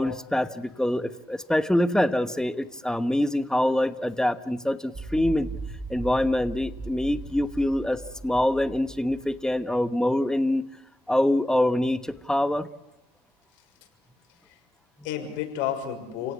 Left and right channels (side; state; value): both; normal; correlation 0.93